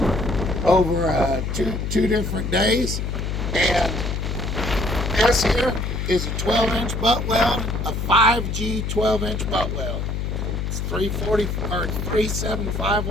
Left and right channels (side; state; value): left; noise; hum, 2 dB below the sound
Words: over two different days, and this here is a 12-inch butt weld, a 5G 12-inch butt weld. It's 375